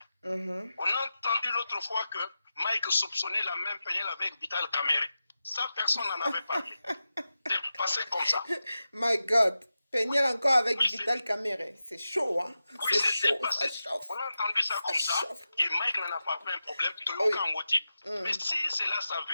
On a entendu l'autre fois que Mike soupçonnait la même Peniel avec Vital Kamere. Ça, personne n'en avait parlé. C'est passé comme ça. My God. Peniel encore avec Vital Kamere. C'est chaud, hein? Oui, c'est passé. On a entendu ça comme ça. Et Mike n'en a pas fait un problème. Mais si cela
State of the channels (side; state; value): both; inverted; correlation -0.92